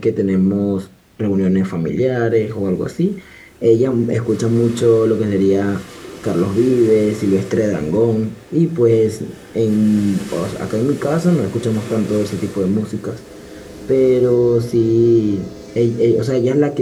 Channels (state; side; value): identical; both; correlation 1.00